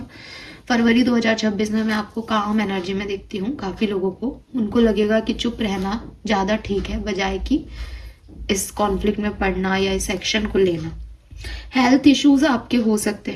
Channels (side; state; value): both; identical; correlation 1.00